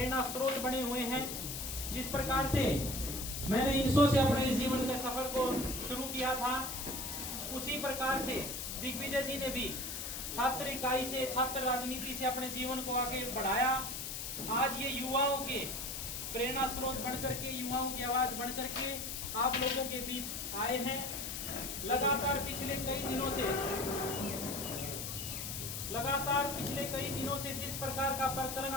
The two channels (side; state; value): left; noise; hiss, 5 dB below the sound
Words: स्रोत बने हुए हैं। जिस प्रकार से मैंने 300 से अपने इस जीवन के सफर को शुरू किया था, उसी प्रकार से दिग्विजय जी ने भी छात्र इकाई से, छात्र राजनीति से अपने जीवन को आगे बढ़ाया। आज ये युवाओं के प्रेरणा स्रोत बन करके, युवाओं की आवाज बन करके आप लोगों के बीच आए हैं। लगातार पिछले कई दिनों से जिस प्रकार का प्रकरण